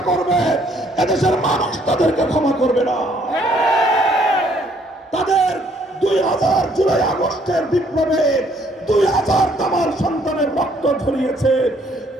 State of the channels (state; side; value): normal; both; correlation 0.65